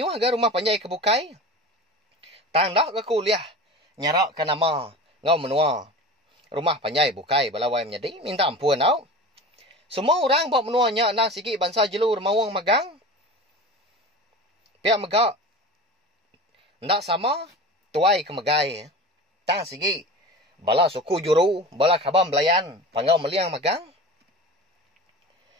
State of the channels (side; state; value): both; normal; correlation 0.34